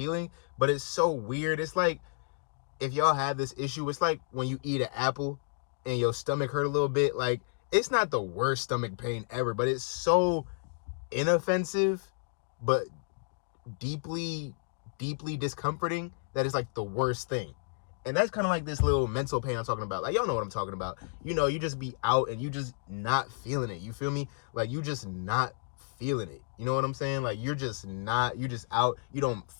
but it's so weird. It's like if y'all have this issue, it's like when you eat an apple and your stomach hurt a little bit. Like, it's not the worst stomach pain ever, but it's so inoffensive, but deeply discomforting that it's like the worst thing. And that's kind of like this little mental pain I'm talking about. Like, y'all know what I'm talking about. You know, you just be out and you just not feeling it. You feel me? Like, you just not feeling it. You know what I'm saying? Like, you're just out. You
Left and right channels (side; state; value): right; silent; digital silence